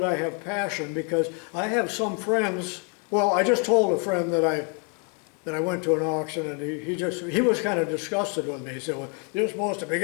I have passion, because I have some friends, well, I just told a friend that I went to an auction, and he was kind of disgusted with me. He said, well, you're supposed to be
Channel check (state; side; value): quieter; right; 36.6 dB